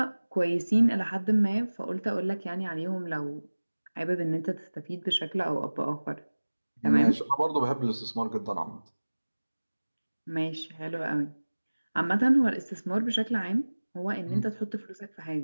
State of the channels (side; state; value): both; inverted; correlation -1.00